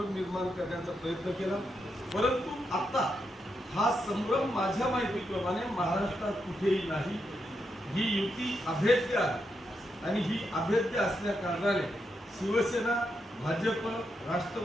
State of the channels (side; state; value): both; normal; correlation 0.83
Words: निर्माण करण्याचा प्रयत्न केला। परंतु आता हा संभ्रम माझ्या माहितीप्रमाणे महाराष्ट्रात कुठेही नाही। ही युती अभेद्य आहे आणि ही अभेद्य असल्या कारणाने शिवसेना, भाजप,